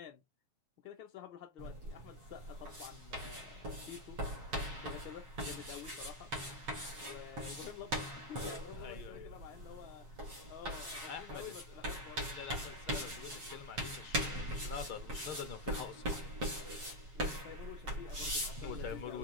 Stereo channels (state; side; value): late; left; 7.3 ms